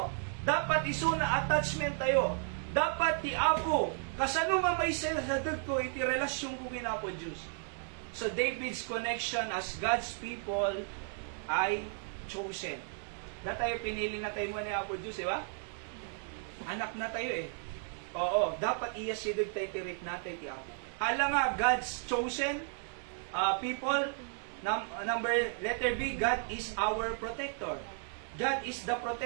Dapat isuna attachment tayo. Dapat ti Apo, kasano nga may sadag ko iti relasyon ko kin Apo Diyos. So David's connection as God's people ay chosen. Na tayo pinili na tayo mo ni Apo Diyos, di ba? Anak na tayo eh. Oo, dapat iyasidog tayo tirik natin ti Apo. Hala nga, God's chosen people. Letter B, God is our protector. God is the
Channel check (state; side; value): silent; left; 55 dB below the other